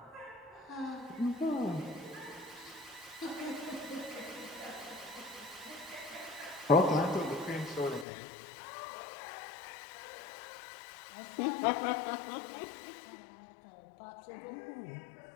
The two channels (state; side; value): drops out; right; at 8.1 s